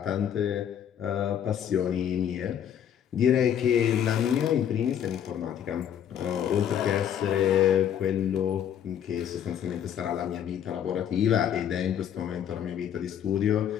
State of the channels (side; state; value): right; quieter; 9.4 dB